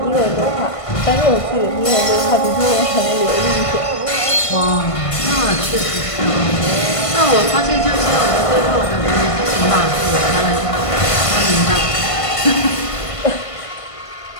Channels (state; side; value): late; right; 1.5 ms